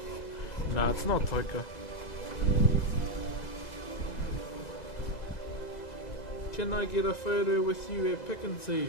Nah, it's not Toika. Can I get a photo with you at Pick and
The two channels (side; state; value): right; late; 2.0 ms